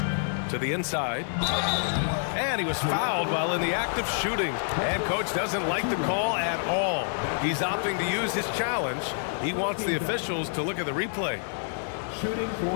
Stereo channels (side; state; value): right; silent; digital silence